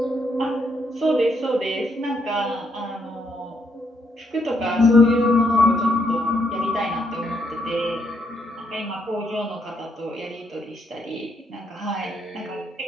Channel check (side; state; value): both; normal; correlation 0.76